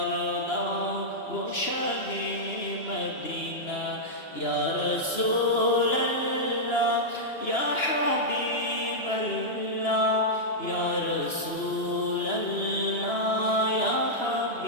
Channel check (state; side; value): late; right; 2.9 ms